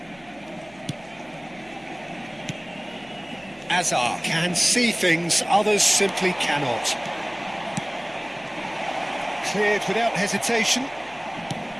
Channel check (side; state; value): left; noise; hum, 27 dB below the sound